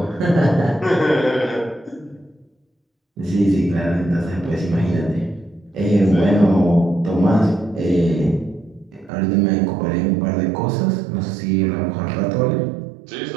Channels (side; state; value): left; drops out; at 9.1 s